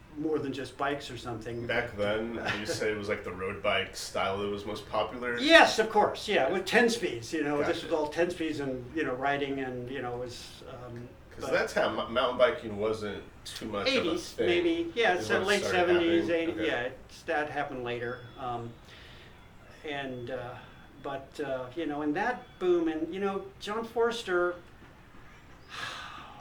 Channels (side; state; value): both; identical; correlation 1.00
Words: more than just bikes or something. Back then, you say it was like the road bike style that was most popular? Yes, of course. Yeah, with 10 speeds. Gotcha. This was all 10 speeds and, riding and, was... Because that time, mountain biking wasn't too much 80s, of a thing. Maybe. Yeah, it's late 70s, happening. 80s. Okay. Yeah, that happened later. And that boom, and, John Forster,